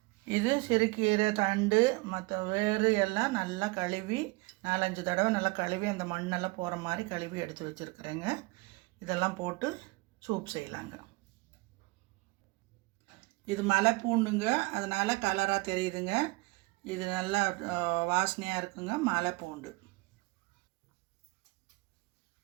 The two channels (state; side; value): quieter; left; 24.9 dB